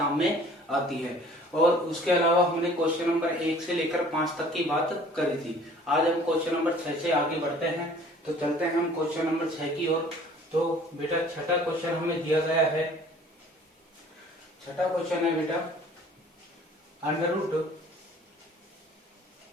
में आती है। और उसके अलावा हमने क्वेश्चन नंबर 1 से लेकर 5 तक की बात करी थी। आज हम क्वेश्चन नंबर 6 से आगे बढ़ते हैं। तो चलते हैं हम क्वेश्चन नंबर 6 की ओर। तो बेटा, छठा क्वेश्चन हमें दिया गया है। छठा क्वेश्चन है बेटा, under root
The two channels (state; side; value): normal; both; correlation 0.52